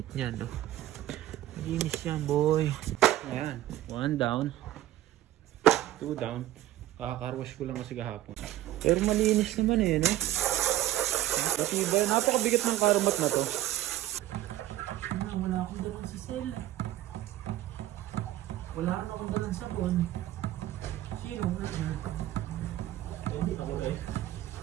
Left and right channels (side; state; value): left; quieter; 14.3 dB